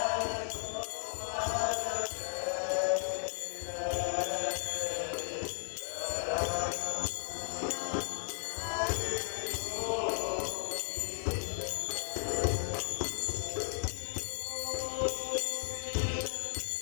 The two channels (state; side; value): silent; right; digital silence